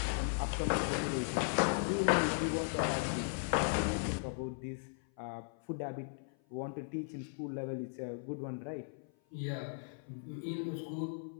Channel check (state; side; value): silent; right; 53 dB below the other